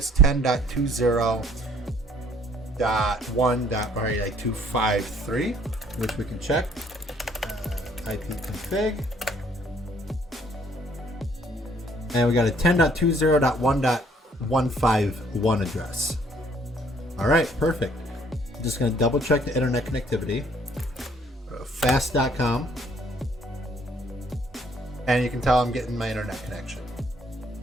10.20.1.253, which we can check. IP config. And we got a 10.20.1.151 address. All right, perfect. I'm just going to double check the internet connectivity. Fast.com. And you can tell I'm getting my internet connection.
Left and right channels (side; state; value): both; normal; correlation 0.62